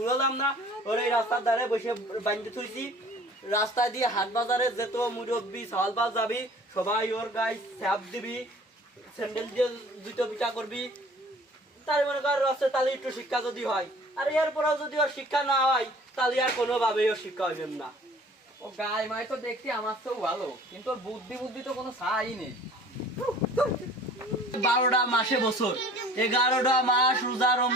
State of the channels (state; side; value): normal; both; correlation 0.49